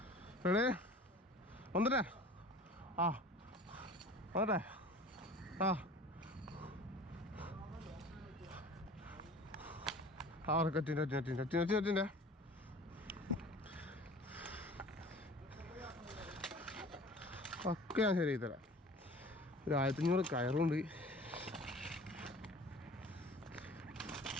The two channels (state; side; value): normal; both; correlation 0.43